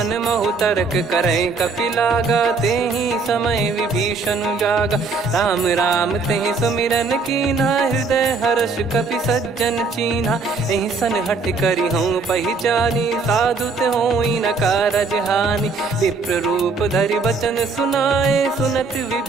महु तर्क करे कपिलागा ते ही समय विभीषण जागा राम राम ते सुमिरन कीना हृदय हर्ष कपि सज्जन चीन्हा यही सन हट करी हूँ पहचानी साधु ते होई न कारज हानि विप्र रूप धरि वचन सुनाए सुनत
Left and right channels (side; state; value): left; quieter; 4.2 dB